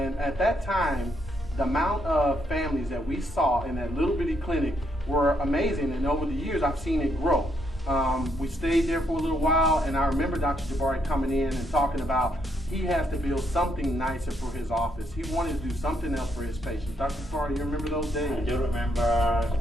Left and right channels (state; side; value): normal; both; correlation 0.75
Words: at that time, the amount of families that we saw in that little bitty clinic were amazing. And over the years, I've seen it grow. We stayed there for a little while, and I remember Dr. Jabari coming in and talking about he has to build something nicer for his office. He wanted to do something else for his patients. Dr. Jabari, you remember those days? I do remember